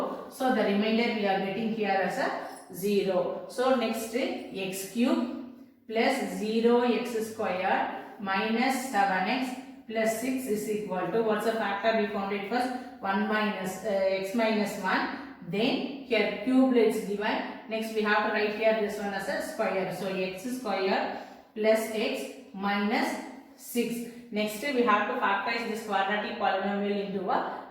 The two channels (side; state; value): both; identical; correlation 1.00